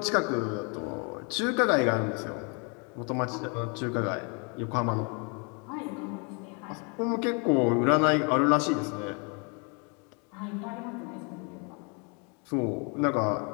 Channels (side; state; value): right; quieter; 35.0 dB